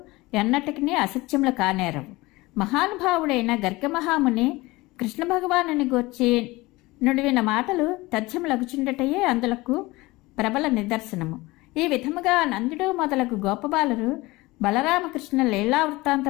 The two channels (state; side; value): quieter; right; 21.1 dB